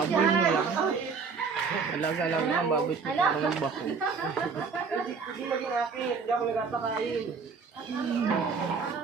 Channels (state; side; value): quieter; left; 5.3 dB